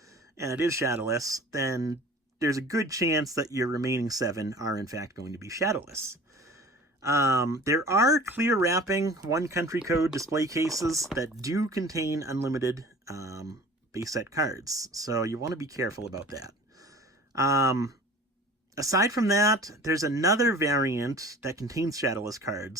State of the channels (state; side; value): normal; both; correlation 0.43